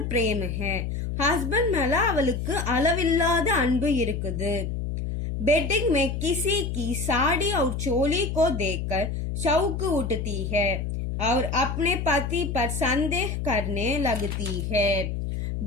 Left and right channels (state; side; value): noise; left; hum, 3 dB below the sound